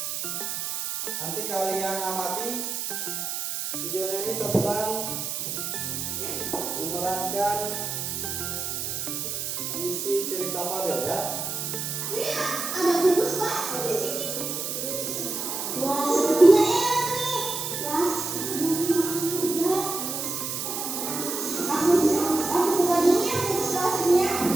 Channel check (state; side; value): noise; right; hiss, 3 dB below the sound